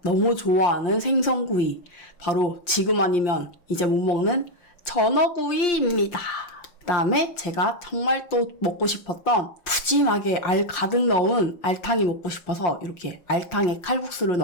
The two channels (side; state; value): right; late; 5.7 ms